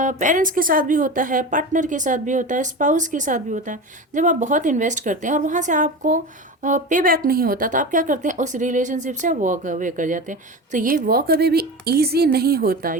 के साथ भी होता है, पार्टनर के साथ भी होता है, स्पाउस के साथ भी होता है। जब आप बहुत इन्वेस्ट करते हैं और वहाँ से आपको पे बैक नहीं होता, तो आप क्या करते हैं? उस रिलेशनशिप से वॉक अवे कर जाते हैं। तो ये वॉक अवे भी ईजी नहीं होता,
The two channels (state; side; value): normal; both; correlation 0.27